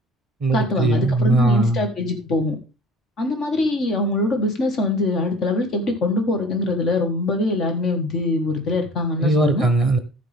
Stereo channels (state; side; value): normal; both; correlation 0.46